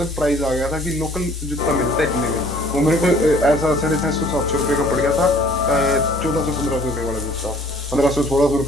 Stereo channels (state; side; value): normal; both; correlation 0.55